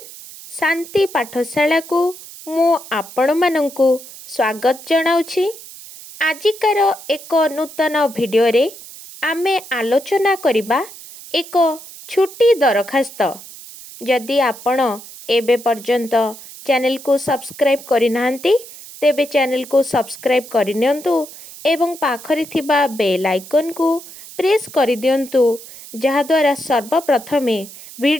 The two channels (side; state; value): right; noise; hiss, 16 dB below the sound